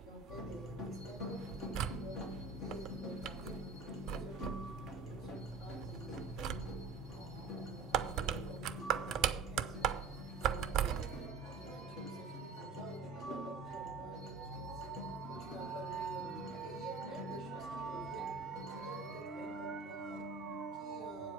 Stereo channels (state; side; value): quieter; left; 5.0 dB